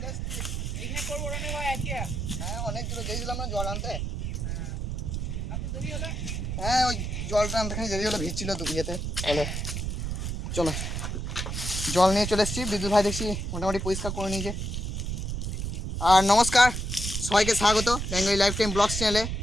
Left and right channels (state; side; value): noise; right; rumble, 3 dB below the sound